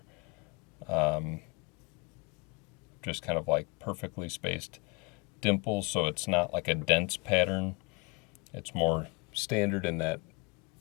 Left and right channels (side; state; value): right; quieter; 27.6 dB